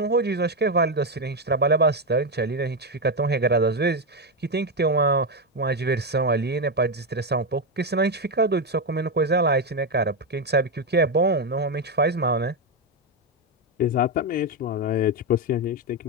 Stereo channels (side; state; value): both; normal; correlation 0.07